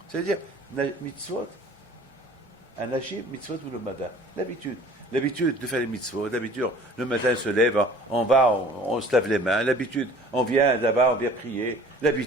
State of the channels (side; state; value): both; normal; correlation 0.48